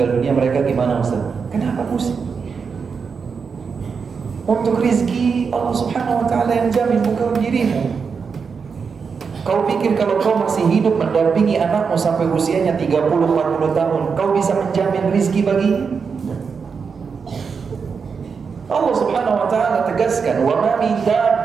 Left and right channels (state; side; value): quieter; left; 5.7 dB